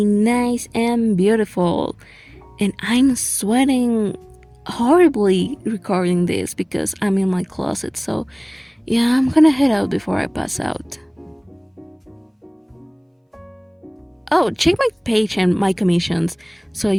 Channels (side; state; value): both; identical; correlation 1.00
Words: nice and beautiful. And I'm sweating horribly recording this because I'm in my closet. So, yeah, I'm gonna head out before I pass out. Oh, check my page and my commissions. So,